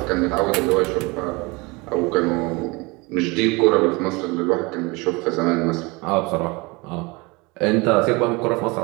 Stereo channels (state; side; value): quieter; left; 25.7 dB